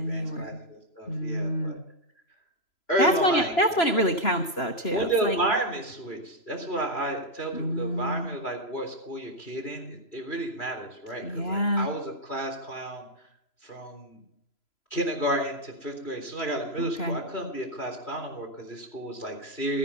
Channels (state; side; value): late; right; 3.0 ms